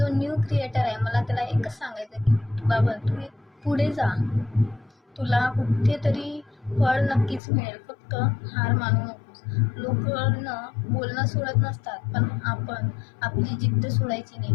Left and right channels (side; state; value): right; drops out; at 7.4 s